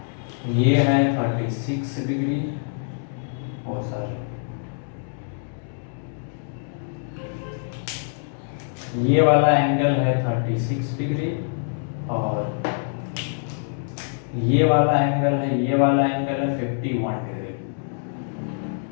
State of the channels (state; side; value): silent; right; digital silence